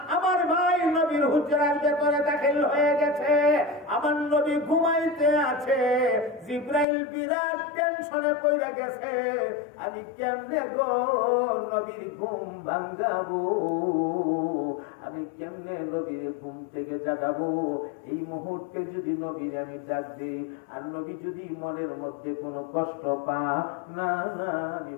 আমার ভাই নবীর হুজরার ভেতরে দাখিল হয়ে গেছে। আমার নবী ঘুমাইতে আছে, জিবরাইল বিরাট টেনশনে পড়ে গেছে, আমি কেমনে গো নবীর ঘুম ভাঙাবো, আমি কেমনে নবীর ঘুম থেকে জাগাবো। এই মুহূর্তে যদি নবীর আমি ডাক দেই আর নবী যদি মনের মধ্যে কোনো কষ্ট পা, না না আমি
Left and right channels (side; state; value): right; drops out; at 6.9 s